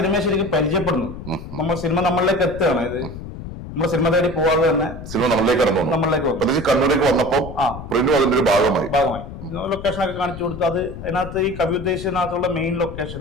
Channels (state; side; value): noise; left; rumble, 11 dB below the sound